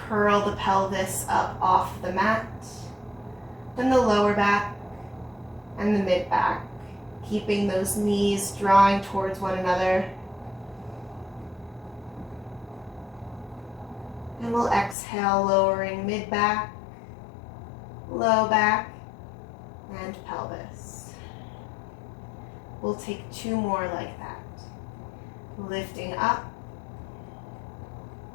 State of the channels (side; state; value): right; drops out; at 15.0 s